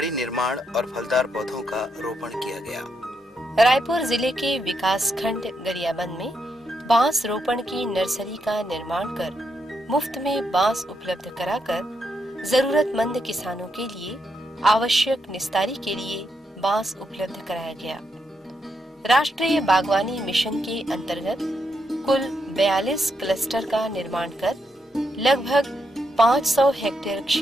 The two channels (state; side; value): normal; both; correlation 0.81